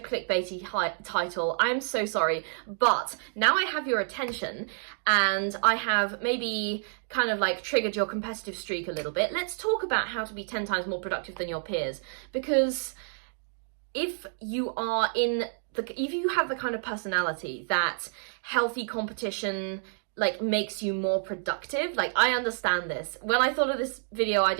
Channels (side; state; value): left; silent; digital silence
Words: title. I'm so sorry, but now I have your attention and I have maybe kind of like triggered your competitive streak a little bit. Let's talk about how to be 10 times more productive than your peers, because if you have the kind of personality that healthy competition like makes you more productive, like I understand this. When I thought of this video